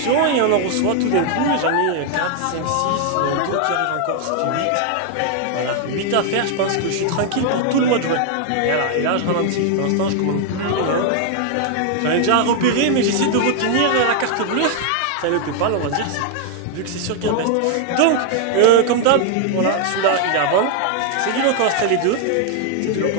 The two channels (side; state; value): both; different; correlation 0.00